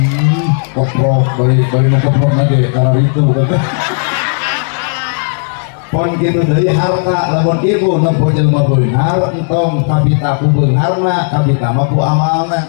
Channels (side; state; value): right; silent; digital silence